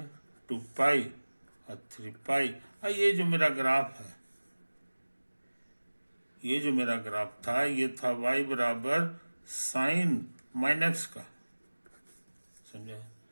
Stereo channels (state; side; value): inverted; both; correlation -1.00